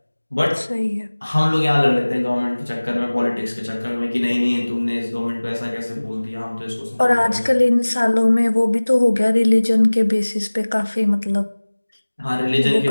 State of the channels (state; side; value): inverted; both; correlation -1.00